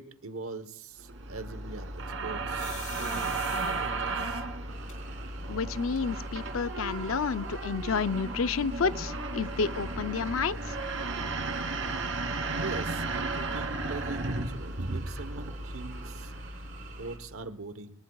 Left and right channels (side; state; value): both; normal; correlation 0.24